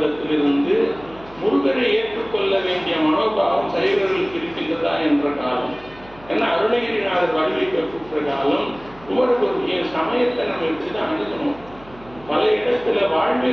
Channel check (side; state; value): right; noise; hum, 23 dB below the sound